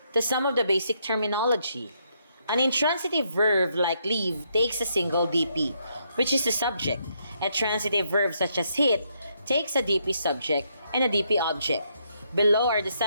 to some of the basic terminology. An intransitive verb like leave takes a single DP, which is the subject. A transitive verb such as hit takes a DP subject and a DP object. Below are the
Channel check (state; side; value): inverted; both; correlation -0.75